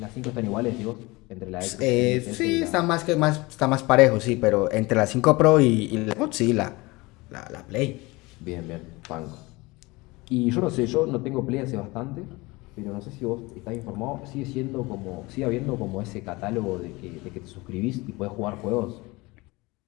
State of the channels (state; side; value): quieter; right; 23.0 dB